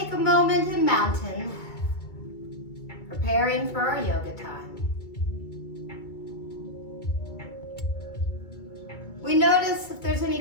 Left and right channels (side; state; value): right; late; 2.3 ms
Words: a moment in mountain, preparing for our yoga time. We notice if there's any